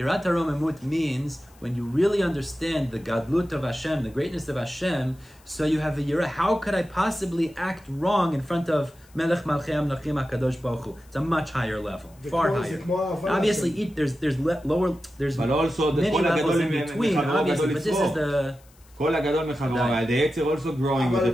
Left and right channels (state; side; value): noise; left; hiss, 29 dB below the sound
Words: haromemut means when you really understand the gadlut of Hashem, the greatness of Hashem, so you have a yir'ah. How could I possibly act wrong in front of Melech Malchei Amlachim HaKadosh Baruch Hu? It's a much higher level, far higher. Obviously, there's lower, there's many levels in between, obviously, but this is the... כל הגדול מחברו, the Yetzer also growing with the